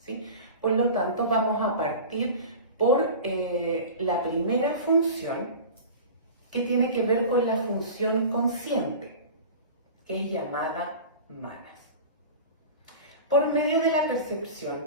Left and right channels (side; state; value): both; inverted; correlation -0.35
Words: Por lo tanto, vamos a partir por la primera función, que tiene que ver con la función consciente, que es llamada manas. Por medio de la percepción